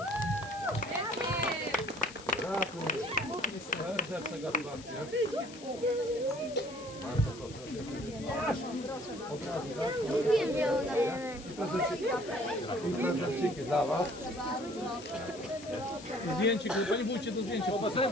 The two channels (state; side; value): noise; left; hiss, 17 dB below the sound